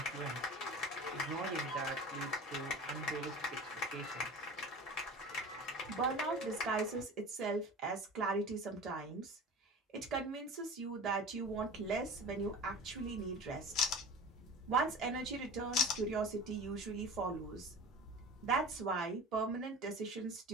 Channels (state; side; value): normal; both; correlation 0.36